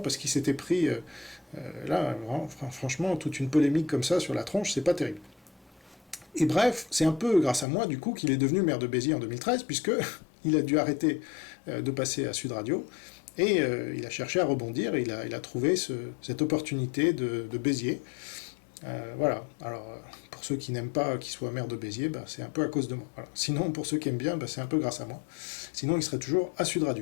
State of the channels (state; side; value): drops out; right; at 7.7 s